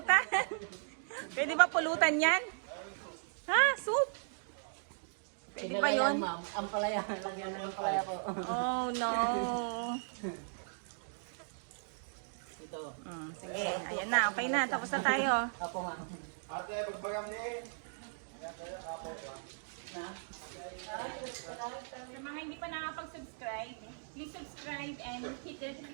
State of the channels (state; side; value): silent; left; digital silence